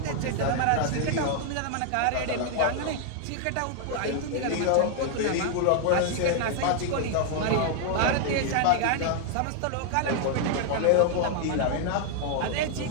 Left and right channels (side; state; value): both; different; correlation 0.00